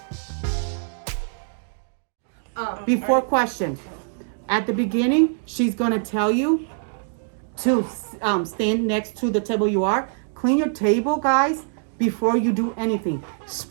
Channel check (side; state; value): left; silent; digital silence